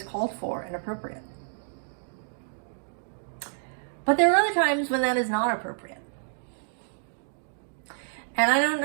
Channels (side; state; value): left; silent; 58 dB below the other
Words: called for and appropriate. But there are other times when that is not appropriate. And I don't